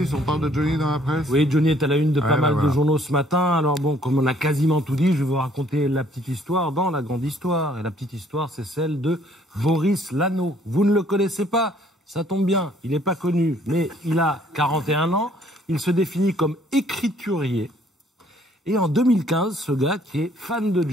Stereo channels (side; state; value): both; normal; correlation 0.62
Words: On parle de Johnny dans la presse? Oui, Johnny est à la une de pas mal de journaux ce matin. Alors bon, comme on a quasiment tout dit, je vais vous raconter la petite histoire dans la grande histoire. Et la petite histoire, c'est celle de Boris Lano. Vous ne le connaissez pas? Ça tombe bien, il n'est pas connu, mais il a 41 ans. Il se définit comme écriturier. Et en 2015, ce gars, qui est fan de